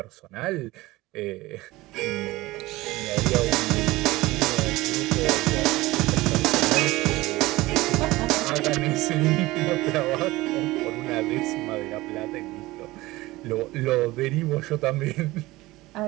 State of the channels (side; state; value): left; quieter; 19.4 dB